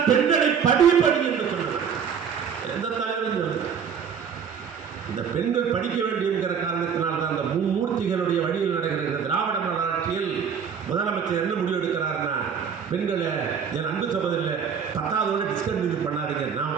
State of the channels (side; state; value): left; quieter; 7.2 dB